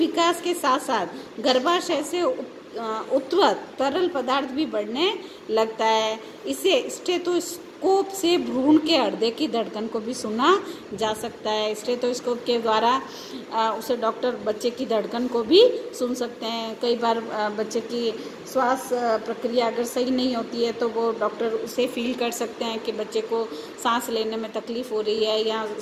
के साथ साथ गर्भाशय से उत्पन्न तरल पदार्थ भी बढ़ने लगता है। इसे स्टेथोस्कोप से भ्रूण के हृदय की धड़कन को भी सुना जा सकता है। स्टेथोस्कोप के द्वारा उसे डॉक्टर बच्चे की धड़कन को भी सुन सकते हैं। कई बार बच्चे की श्वास प्रक्रिया अगर सही नहीं होती है तो वो डॉक्टर उसे फील कर सकते हैं कि बच्चे को सांस लेने में तकलीफ हो रही है या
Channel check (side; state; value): both; identical; correlation 1.00